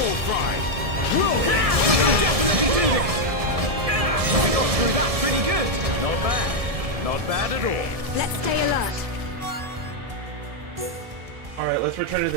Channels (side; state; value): left; late; 1.7 ms